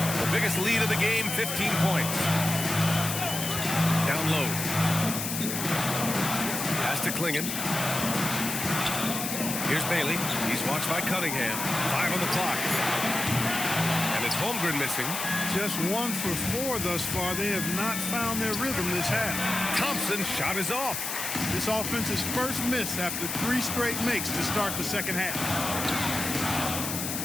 The biggest lead of the game, 15 points. Down low. Pass to Klingon. Here's Bailey. He's watched by Cunningham. 5 on the clock. And it's Holmgren missing. Just 1 for 4 thus far. They have not found their rhythm this half. Thompson's shot is off. This offense's first miss after 3 straight makes to start the second half.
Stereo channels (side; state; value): left; noise; hiss, 3 dB below the sound